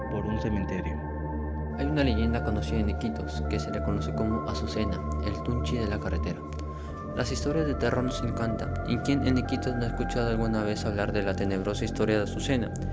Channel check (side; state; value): both; identical; correlation 1.00